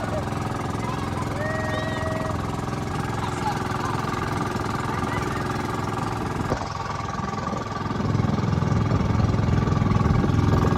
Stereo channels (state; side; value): identical; both; correlation 1.00